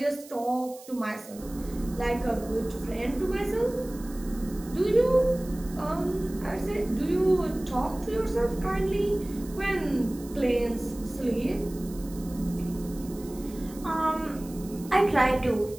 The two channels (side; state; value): right; noise; hiss, 19 dB below the sound